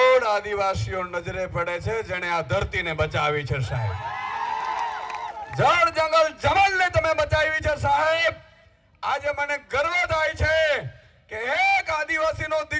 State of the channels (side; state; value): both; identical; correlation 1.00